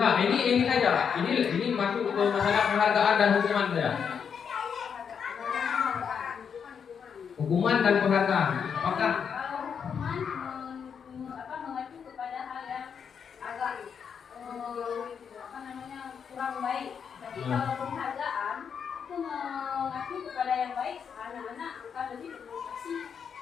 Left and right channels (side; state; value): right; quieter; 7.0 dB